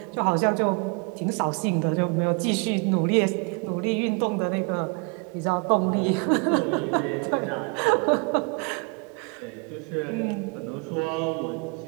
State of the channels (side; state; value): left; quieter; 33.4 dB